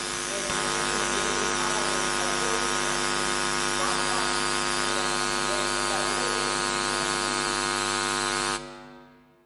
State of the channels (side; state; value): both; identical; correlation 1.00